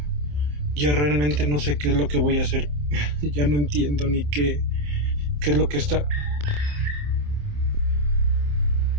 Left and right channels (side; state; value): left; late; 27 ms